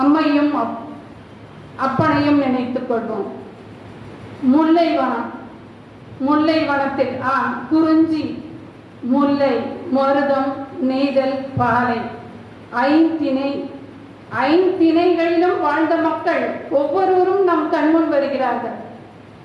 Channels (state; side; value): identical; both; correlation 1.00